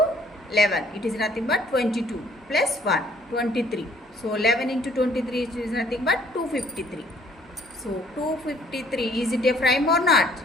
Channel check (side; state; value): both; normal; correlation 0.61